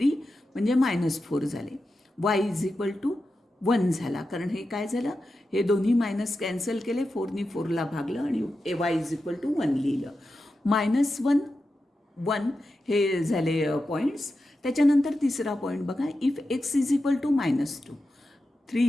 म्हणजे -4 झाले. y इज इक्वल टू 1 झाला. कारण हे काय झालं, हे दोन्ही मायनस कॅन्सल केले, 4नी 4ला भागलं आणि y इज इक्वल टू 1 लिहिलं. -1 1 हे झाले पॉईंट्स. त्याच्यानंतर तिसरा पॉईंट बघा. If x is equal to -2, 3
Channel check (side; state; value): both; normal; correlation 0.90